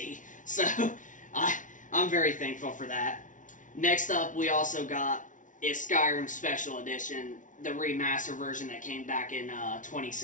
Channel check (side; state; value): right; late; 0.37 ms